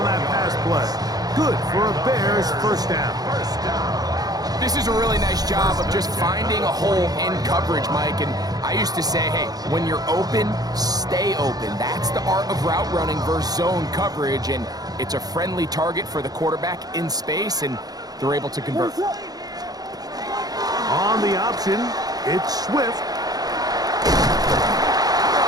that pass play. Good for a Bears first down. This is a really nice job of just finding a hole in coverage, Mike. And I used to say, hey, when you're open, stay open. That's the art of route running versus zone coverage. And it's a friendly target for the quarterback in space, and they're able to convert. On the option, it's Swift.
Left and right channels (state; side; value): late; left; 0.19 ms